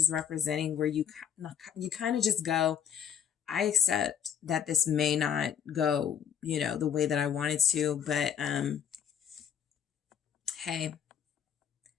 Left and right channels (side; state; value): right; quieter; 8.6 dB